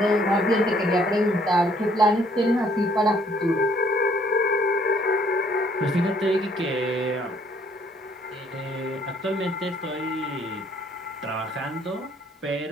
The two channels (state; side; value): normal; both; correlation 0.63